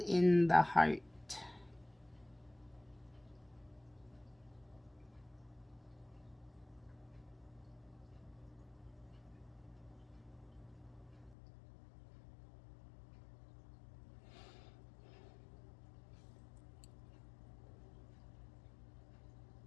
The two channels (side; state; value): right; drops out; at 11.4 s